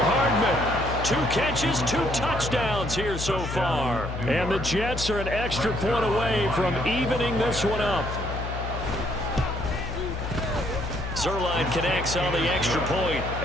Hardman. 2 catches, 2 touchdowns here so far. And the Jets are an extra point away from evening this one up. Zerline connects on the extra point,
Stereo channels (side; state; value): left; noise; hum, 6 dB below the sound